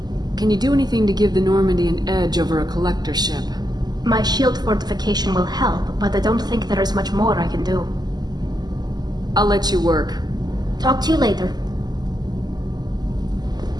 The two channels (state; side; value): late; left; 0.20 ms